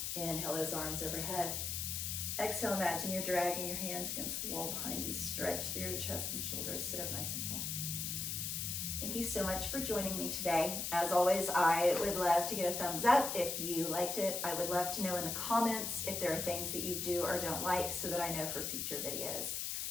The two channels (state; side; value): noise; left; hiss, 2 dB below the sound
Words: Inhale those arms overhead. Exhale, imagine you're dragging your hands against the wall behind you. Stretch through your chest and shoulders. Sit up nice and tall. Thank you so much for joining me today. As always, I would love to get a thumbs up if you liked it. I would love to know in the comments if there are things that you do or don't like so that I know for future videos.